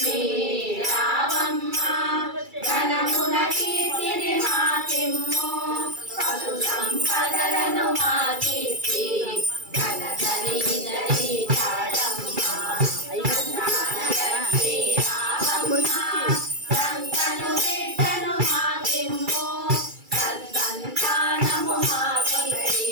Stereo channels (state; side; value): late; left; 2.3 ms